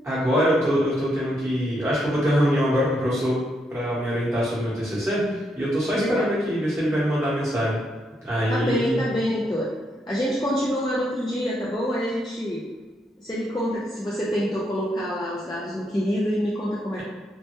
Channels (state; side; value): normal; both; correlation 0.78